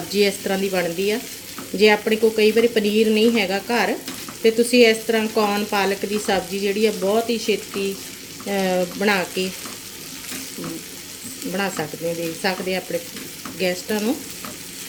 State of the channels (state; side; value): identical; both; correlation 1.00